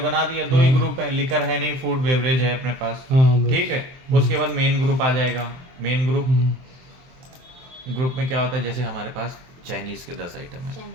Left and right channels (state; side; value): late; left; 23 ms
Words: दिया, 2 ही ग्रुप है, लिकर है नहीं, फूड बेवरेज है अपने पास, ठीक है। उसके बाद मेन ग्रुप आ जाएगा। मेन ग्रुप में क्या होता है, जैसे हमारे पास चाइनीज के 10 आइटम है,